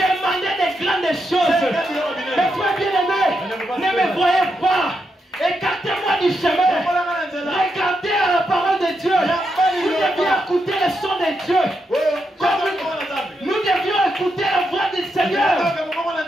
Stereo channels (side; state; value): both; normal; correlation 0.83